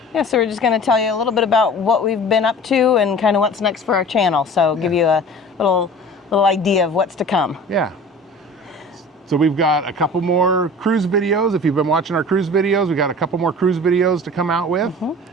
Yeah, so we're just going to tell you a little bit about what we've been up to and kind of what's next for our channel. So give you a little idea of what's to come. Yeah. So we've got a couple more cruise videos. If you've been watching our cruise videos, we got a couple more cruise videos to come out with.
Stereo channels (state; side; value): normal; both; correlation 0.41